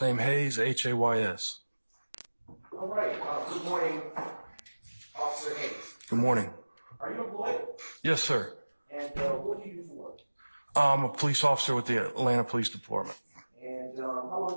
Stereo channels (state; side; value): inverted; both; correlation -1.00